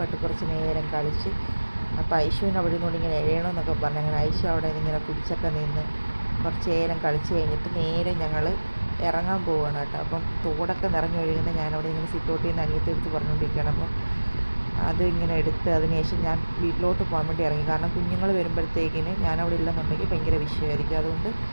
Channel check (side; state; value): both; inverted; correlation -1.00